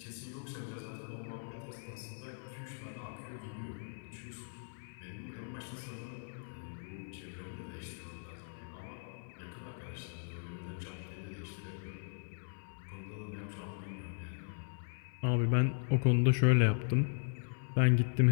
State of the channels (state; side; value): silent; right; 52 dB below the other